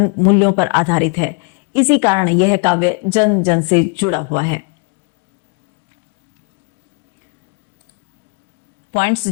मूल्यों पर आधारित है। इसी कारण यह काव्य जन जन से जुड़ा हुआ है। पॉइंट्स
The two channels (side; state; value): right; quieter; 33.6 dB